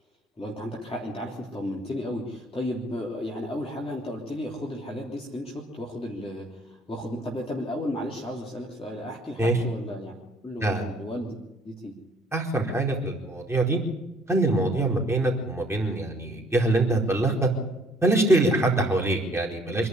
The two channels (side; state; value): both; normal; correlation 0.60